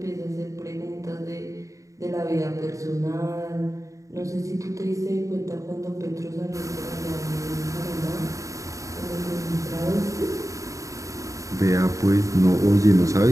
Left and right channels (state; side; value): late; left; 0.16 ms